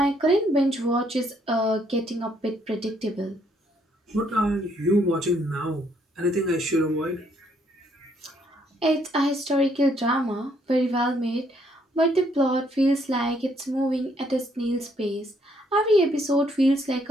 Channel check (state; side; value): normal; both; correlation 0.69